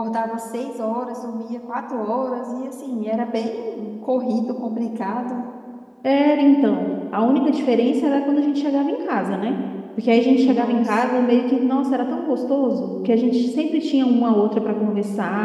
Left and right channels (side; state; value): both; identical; correlation 1.00